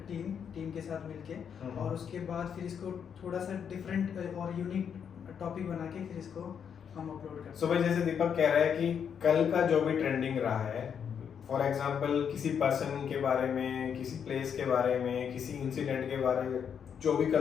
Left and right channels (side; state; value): right; quieter; 7.6 dB